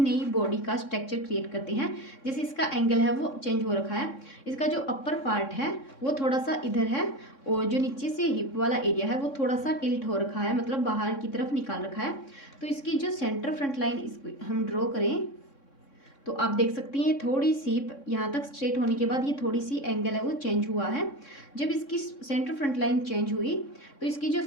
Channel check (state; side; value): late; right; 3.6 ms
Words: बॉडी का स्ट्रक्चर क्रिएट करते हैं। जैसे इसका एंगल है वो चेंज हो रखा है, इसका जो अपर पार्ट है वो थोड़ा सा इधर है और जो नीचे से हिप वाला एरिया है वो थोड़ा सा टिल्ट हो रखा है, मतलब बाहर की तरफ निकाल रखा है। तो इसकी जो सेंटर फ्रंट लाइन इसको हम ड्रॉ करें तो आप देख सकती हैं थोड़ी सी यहाँ तक स्ट्रेट होने के बाद ये थोड़ी सी एंगल है वो चेंज हुआ है। जब इसकी सेंटर फ्रंट लाइन चेंज हुई तो इसकी जो